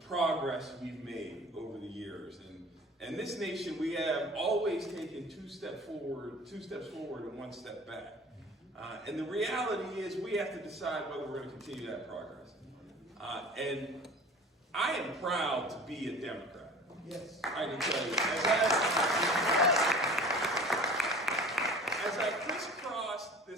we've made over the years. And this nation, we have always taken two steps forward and one step back. And the reality is we have to decide whether we're going to continue that progress. And I am proud to be a Democrat. Yes. I can tell you. As I crisscrossed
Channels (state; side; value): normal; both; correlation 0.42